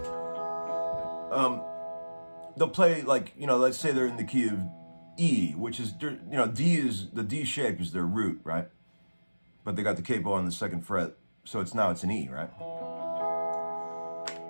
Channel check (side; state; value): both; inverted; correlation -1.00